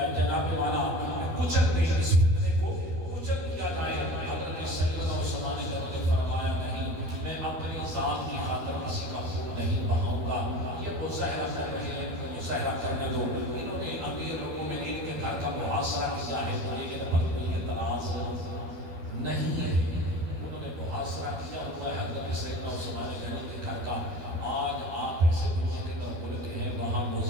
جناب والا کچل دیں، اس فتنے کو کچل دیا جائے. حضرت سیدنا عثمان غنی نے فرمایا نہیں، میں اپنی ذات کی خاطر کسی کا خون نہیں بہاؤں گا. یہ مظاہرہ کر رہے ہیں، مظاہرہ کرنے دو. انہوں نے امیر المومنین کے گھر کا محاصرہ کیا ہے، مجھے ان پر کوئی اعتراض نہیں ہے. انہوں نے محاصرہ کیا ہوا ہے حضرت سیدنا عثمان غنی کے گھر کا. آج آپ ایسے دنیا کے در ملک ہیں وہاں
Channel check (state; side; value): late; left; 12 ms